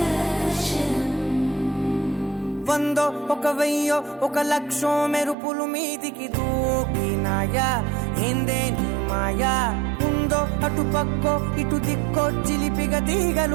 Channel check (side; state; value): left; drops out; at 5.4 s